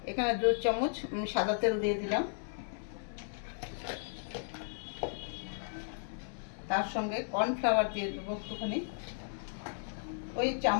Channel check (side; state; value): right; silent; 54 dB below the other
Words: এখানে 2 চামচ সাদা তেল দিয়ে দিলাম। তার সঙ্গে কর্নফ্লাওয়ার দিয়ে দেবো একটুখানি, ওই